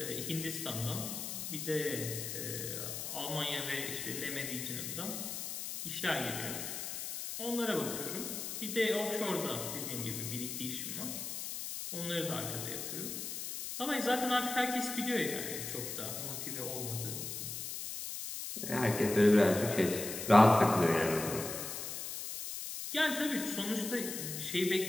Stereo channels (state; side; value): noise; left; hiss, 5 dB below the sound